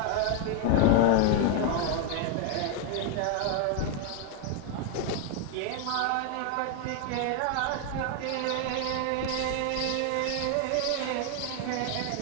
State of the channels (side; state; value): both; different; correlation 0.01